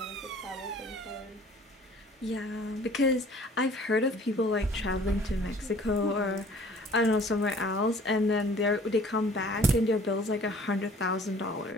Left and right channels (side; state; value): both; normal; correlation 0.52